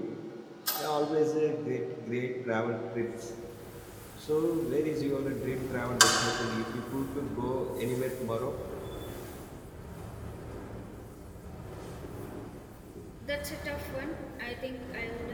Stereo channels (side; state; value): both; identical; correlation 1.00